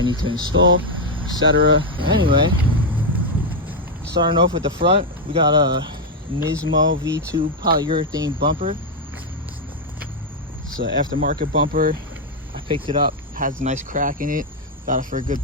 need to install, etc. Anyway, starting off with the front, we got a Nismo V2 polyurethane bumper. It's an aftermarket bumper. I picked it up, has a nice crack in it, got it for a good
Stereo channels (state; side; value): normal; both; correlation 0.03